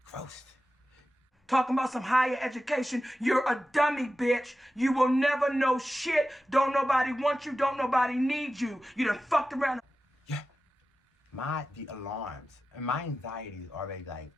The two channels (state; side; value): normal; both; correlation 0.93